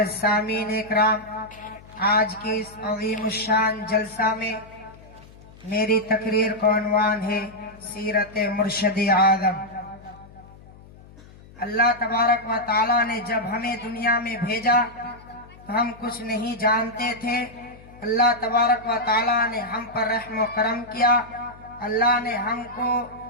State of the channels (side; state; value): left; noise; hum, 22 dB below the sound